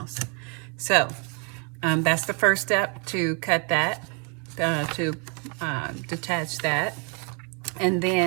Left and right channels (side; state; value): left; quieter; 35.8 dB